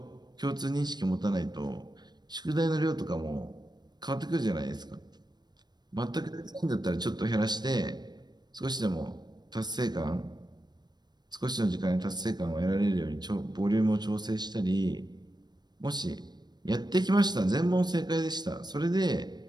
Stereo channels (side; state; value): left; late; 0.20 ms